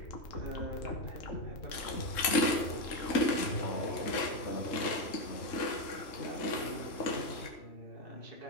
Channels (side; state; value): right; late; 3.6 ms